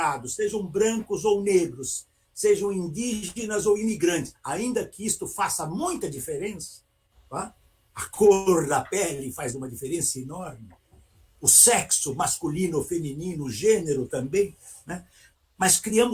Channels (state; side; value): identical; both; correlation 1.00